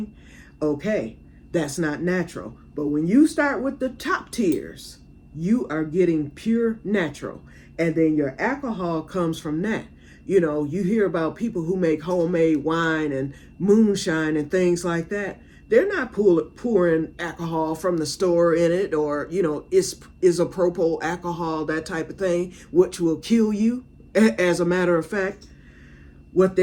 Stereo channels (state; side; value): identical; both; correlation 1.00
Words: Okay, that's not natural. But when you start with the top tiers, you are getting pure natural. And then your alcohol comes from that. You hear about people who make homemade wine and moonshine and things like that. They're not pouring alcohol from the store in it, or, isopropyl alcohol, that type of thing, which will kill you. As a matter of fact, what